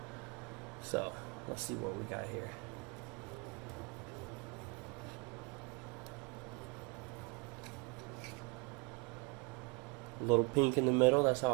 So let's see what we got here. A little pink in the middle, that's how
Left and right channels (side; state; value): left; quieter; 29.3 dB